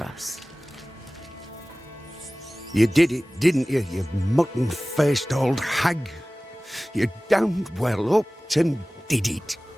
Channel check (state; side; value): normal; both; correlation 0.98